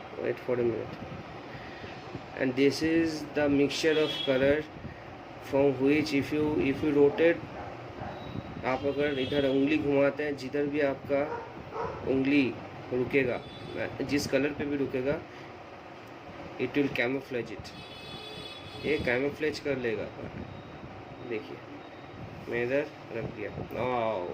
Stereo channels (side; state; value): both; identical; correlation 1.00